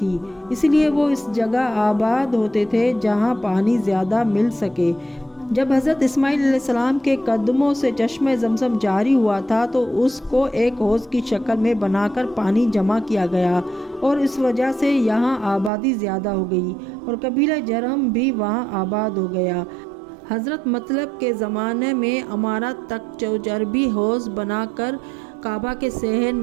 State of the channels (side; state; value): left; drops out; at 15.7 s